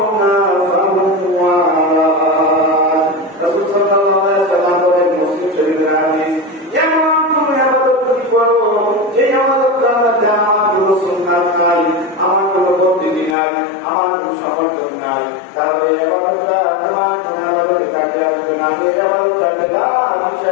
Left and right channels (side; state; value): right; drops out; at 13.4 s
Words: ফাহুয়া রাদ। রাসূল সাল্লাল্লাহু আলাইহি ওয়াসাল্লাম বলেন, মুসলিম শরীফের হাদিস, এমন কোন ইবাদত যদি করো যে ইবাদতটা মধ্যে আমার কোনো সুন্নাত নাই, আমার কোনো পদ্ধতি নাই, আমার কোনো সমর্থন নাই, তাহলে ইবাদতটা তোমার কোনো ইবাদত কাজে আসবে না। এই ইবাদতটা বেদাত